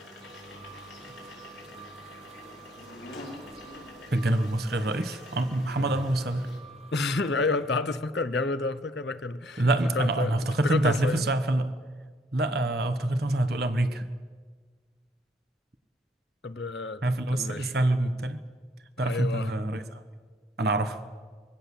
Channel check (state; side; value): normal; both; correlation 0.66